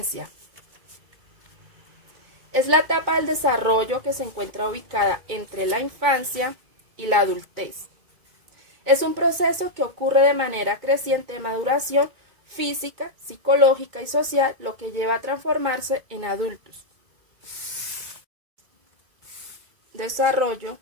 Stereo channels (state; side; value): late; left; 2.3 ms